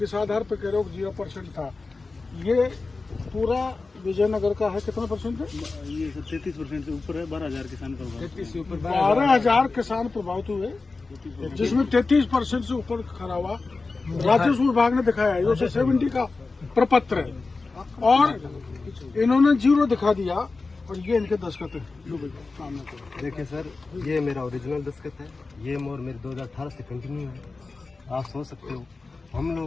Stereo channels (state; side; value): quieter; right; 3.8 dB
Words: आधार पे कह रहे हो 0% था। ये पूरा विजयनगर का है, कितना परसेंट है? ये 33% से ऊपर है, 12,000 किसान प्रभावित, 12,000 किसान प्रभावित हुए, जिसमें 33% से ऊपर खरा हुआ। राजस्व विभाग ने दिखाया है, 70 का प्रपत्र है और इन्होंने 0 दिखा दिया और ये इनके दस्तखत है। देखिए सर, ये मेरा ओरिजिनल दस्तखत है, ये मोहर मेरे 2018 से कंटिन्यू है। आप सोच सकते हो, हम